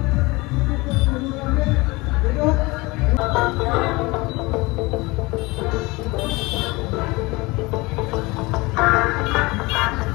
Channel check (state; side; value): quieter; right; 23.5 dB